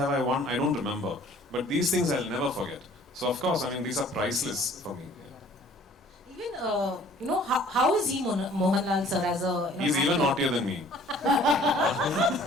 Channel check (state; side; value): normal; both; correlation 0.54